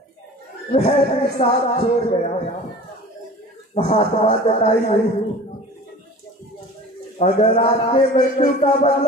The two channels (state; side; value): normal; both; correlation 0.41